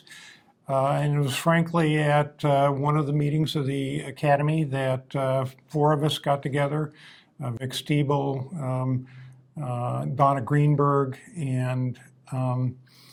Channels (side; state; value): both; identical; correlation 1.00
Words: and it was frankly at one of the meetings of the Academy that four of us got together, Vic Stiebel, Donna Greenberg, and I'm